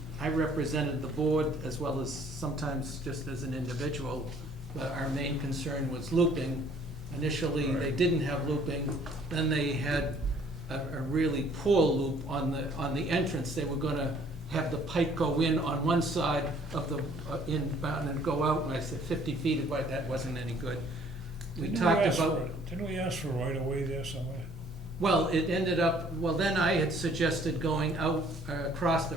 I represented the board as well as sometimes just as an individual. But our main concern was looping. Initially, they didn't have looping, then they had a really poor loop on the entrance. They were gonna have the pipe go in on one side of the inbound and go out, and I said 50 feet, but that wasn't any good. We talked about, Didn't we ask for right away there somewhere? Well, it ended up, well, then I had suggested going out across the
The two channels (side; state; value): both; normal; correlation 0.59